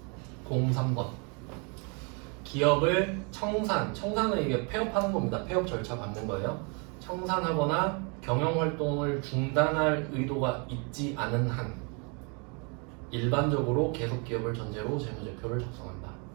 03번. 기업을 청산은 이게 폐업하는 겁니다. 폐업 절차 밟는 거예요. 청산하거나 경영 활동을 중단할 의도가 있지 않은 한 일반적으로 계속 기업을 전제로 재무제표를 작성한다.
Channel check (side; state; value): left; quieter; 34.4 dB